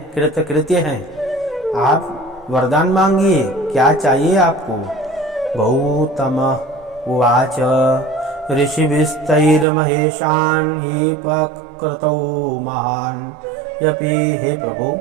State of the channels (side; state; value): left; drops out; at 9.7 s